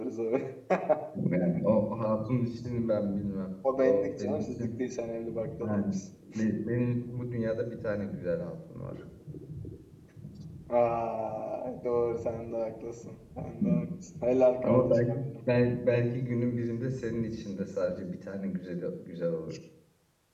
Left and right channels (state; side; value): identical; both; correlation 1.00